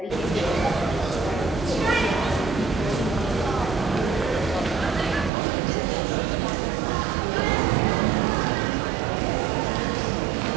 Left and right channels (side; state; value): left; drops out; at 5.3 s